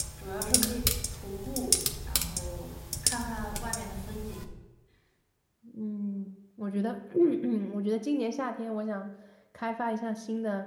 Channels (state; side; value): identical; both; correlation 1.00